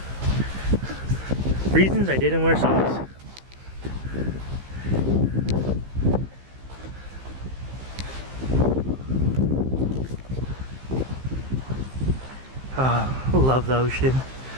Reasons I didn't wear socks. I love the ocean.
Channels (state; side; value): late; left; 15 ms